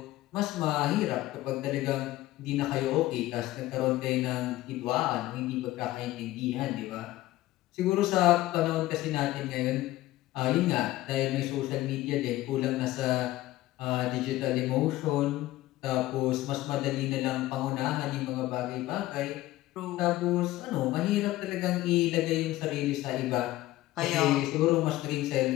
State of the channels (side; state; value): right; quieter; 16.5 dB